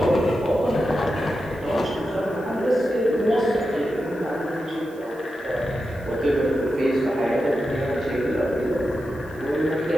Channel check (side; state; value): right; noise; hiss, 28 dB below the sound